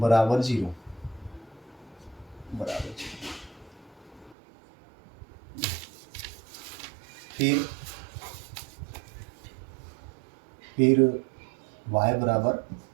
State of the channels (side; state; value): left; drops out; at 4.4 s